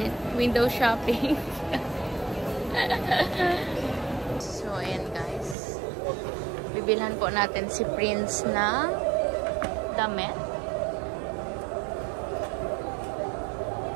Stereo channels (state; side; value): drops out; left; at 5.6 s